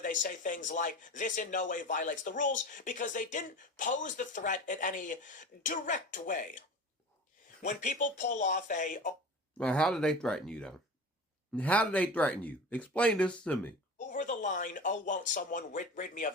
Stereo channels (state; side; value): normal; both; correlation 0.34